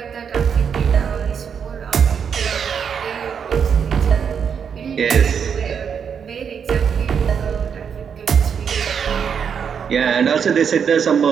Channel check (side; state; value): left; quieter; 7.1 dB